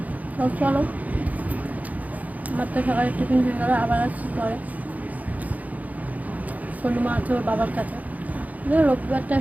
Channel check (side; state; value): left; late; 0.076 ms